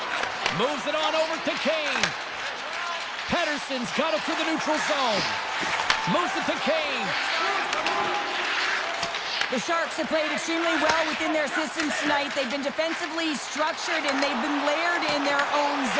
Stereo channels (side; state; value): both; identical; correlation 1.00